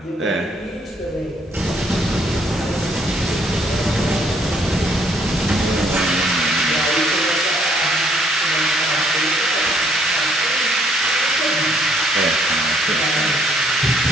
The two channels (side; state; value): both; normal; correlation 0.67